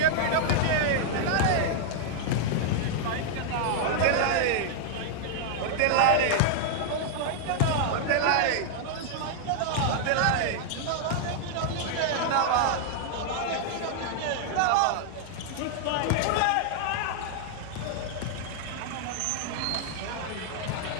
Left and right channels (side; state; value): both; different; correlation -0.01